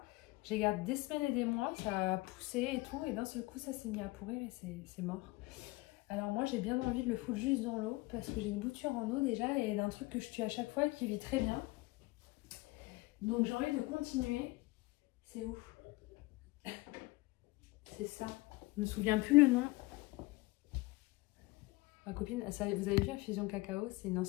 J'ai gardé des semaines et des mois, ça a poussé et tout, et d'un seul coup ça s'est mis à pourrir et c'est mort. Alors moi j'ai bien envie de le foutre juste dans l'eau parce que j'ai une bouture en eau déjà et d'un truc que je tue à chaque fois et qui vit très bien. Donc j'ai envie de continuer. C'est où? C'est ça. Je me souviens plus le nom. Ma copine, ça, vous avez vu Infusion Cacao, c'est une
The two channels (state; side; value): quieter; right; 21.9 dB